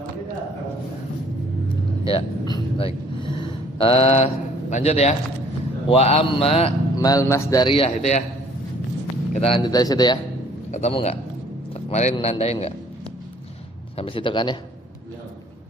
Ya, baik. Lanjut ya. Wa amma mal masdariyah itu ya. Kita lanjut dari situ ya. Ketemu nggak? Kemarin nandain nggak? Sampai situ kan ya?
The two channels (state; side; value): normal; both; correlation 0.57